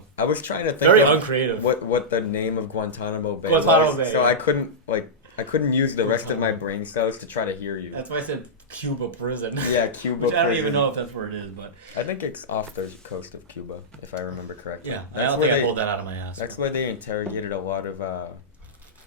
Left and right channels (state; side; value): normal; both; correlation -0.11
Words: I was trying to think very of uncreative. What the name of Guantanamo Bay was. Bay. So I couldn't use the rest of my brain cells to try to hear you. That's why I said Cuba prison. Yeah, Cuba Which prison. I don't even know if that's where it is, but I think it's off the coast of Cuba, if I remember correctly. Yeah, I don't think I pulled that out of my ass. That's where they interrogated a lot of